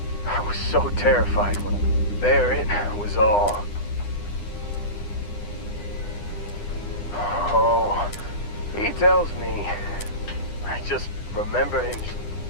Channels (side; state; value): right; late; 9.9 ms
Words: I was so terrified when there it was all. Oh, he tells me. I just remember him.